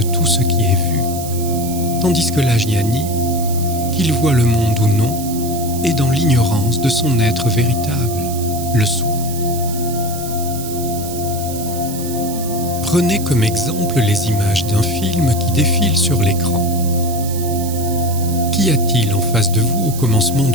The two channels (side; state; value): right; noise; hiss, 11 dB below the sound